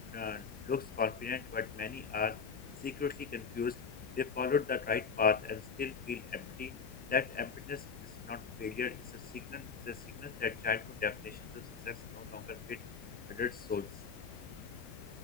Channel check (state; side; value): quieter; right; 5.7 dB